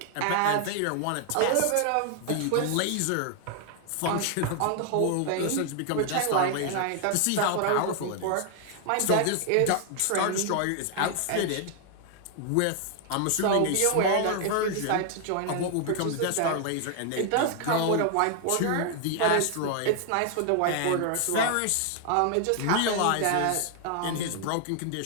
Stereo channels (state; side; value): different; both; correlation 0.00